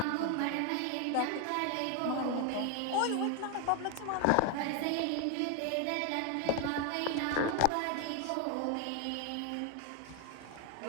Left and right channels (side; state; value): both; different; correlation 0.01